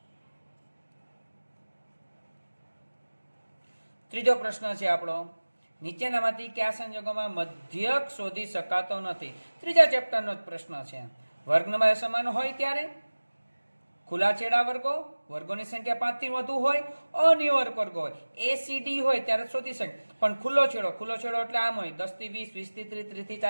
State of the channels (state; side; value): inverted; both; correlation -1.00